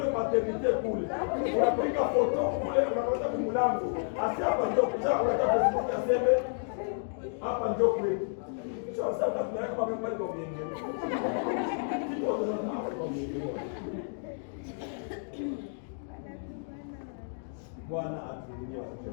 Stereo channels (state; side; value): silent; right; digital silence